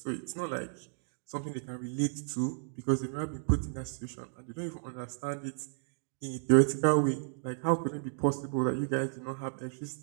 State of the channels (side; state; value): left; silent; digital silence